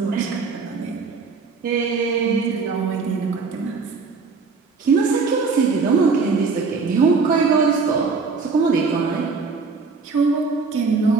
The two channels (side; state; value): left; quieter; 4.7 dB